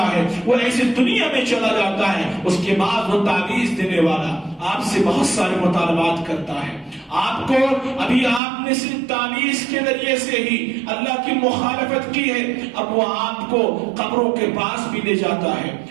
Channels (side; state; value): left; drops out; at 8.4 s